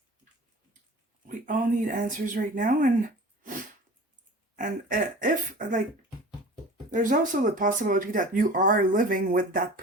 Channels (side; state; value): both; normal; correlation 0.40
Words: We all need answers right now. And if, like, there's also the possibility that you are living with that